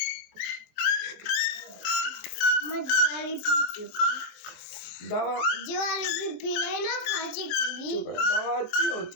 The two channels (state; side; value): late; right; 23 ms